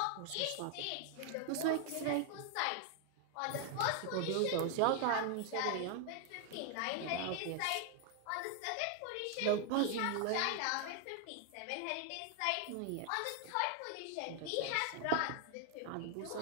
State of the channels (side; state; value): both; different; correlation 0.00